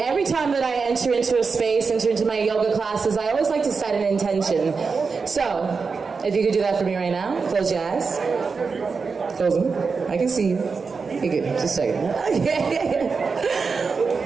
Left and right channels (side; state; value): left; quieter; 4.9 dB